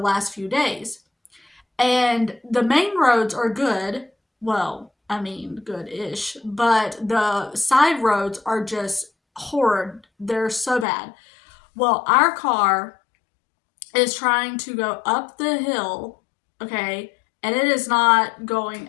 few days. And the main roads are good. Well, I mean, good-ish. But the side roads are just horrid. They're so bad. Well, our car is trying to go up the hill, okay, and it is not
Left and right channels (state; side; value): drops out; right; at 10.9 s